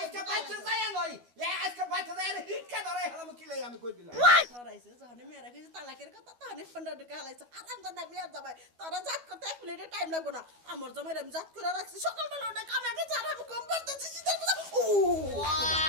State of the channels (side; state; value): left; late; 12 ms